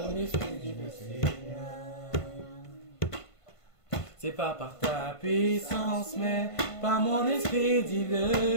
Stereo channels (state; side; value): late; right; 1.5 ms